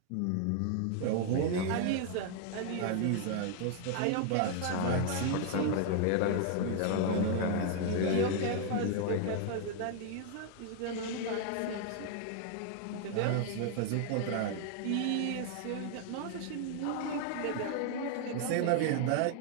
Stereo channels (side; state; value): both; different; correlation 0.00